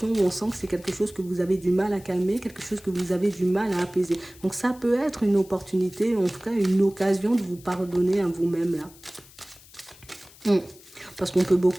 où on sent que c'est quelque chose que vous avez du mal à calmer, quelque chose que vous avez du mal à apaiser. Donc, ça peut être une opportunité, en tout cas, une occasion de vous pardonner à vous-même, là. Parce qu'on peut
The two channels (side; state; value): left; noise; hiss, 23 dB below the sound